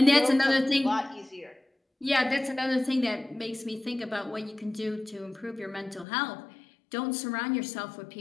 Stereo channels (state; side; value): drops out; right; at 6.1 s